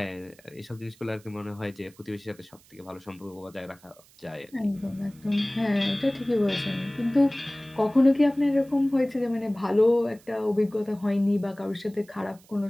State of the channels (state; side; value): noise; right; hiss, 27 dB below the sound